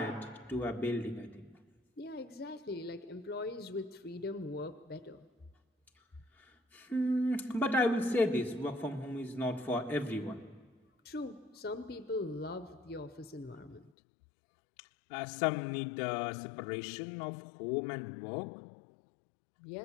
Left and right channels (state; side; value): drops out; right; at 13.9 s